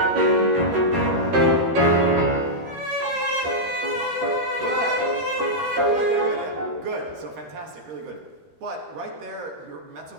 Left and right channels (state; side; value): late; left; 13 ms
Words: But right there, your mezzo